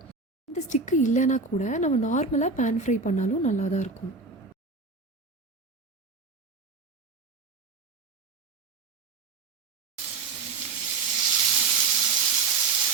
இந்த ஸ்டிக்கு இல்லைன்னா கூட நம்ம நார்மலாக பேன் ஃப்ரை பண்ணாலும் நல்லா தான் இருக்கும்.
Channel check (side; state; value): left; quieter; 4.3 dB